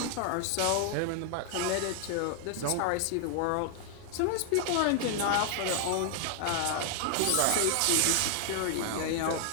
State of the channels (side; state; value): both; different; correlation 0.00